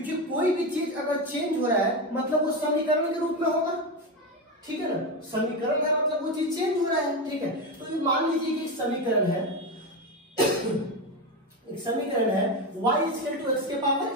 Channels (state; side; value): normal; both; correlation 0.15